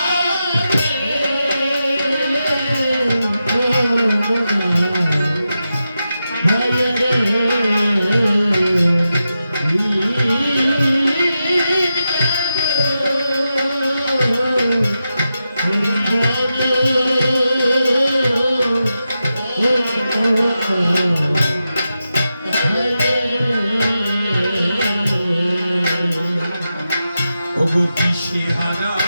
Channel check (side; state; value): both; inverted; correlation -0.89